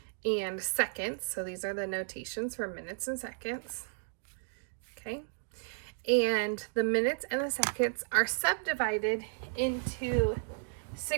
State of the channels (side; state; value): left; silent; digital silence